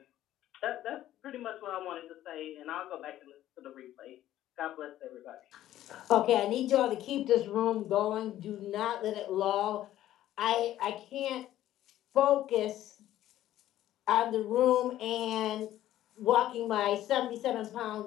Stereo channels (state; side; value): quieter; right; 13.3 dB